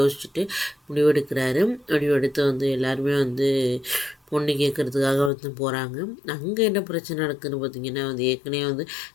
முடிவெடுக்கிறாரு. முடிவெடுத்து வந்து எல்லாருமே வந்து பொண்ணு கேட்குறதுக்காக வந்து போகிறாங்க. அங்கே என்ன பிரச்சனை நடக்குதுன்னு பார்த்தீங்கன்னா வந்து ஏற்கனவே வந்து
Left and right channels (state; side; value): drops out; right; at 5.3 s